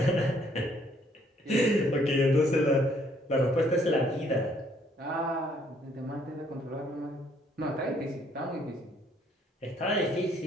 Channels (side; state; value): both; normal; correlation 0.65